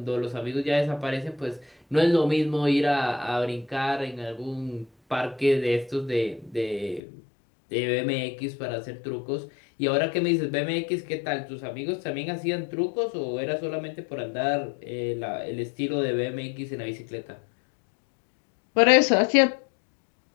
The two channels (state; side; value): drops out; right; at 7.0 s